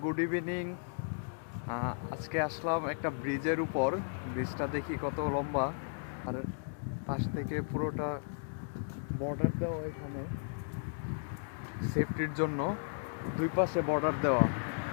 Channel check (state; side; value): silent; right; digital silence